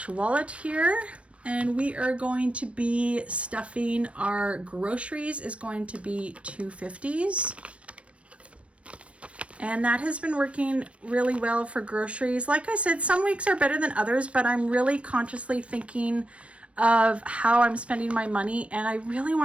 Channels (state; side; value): late; left; 0.062 ms